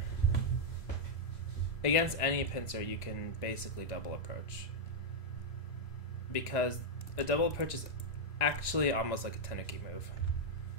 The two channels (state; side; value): late; right; 1.9 ms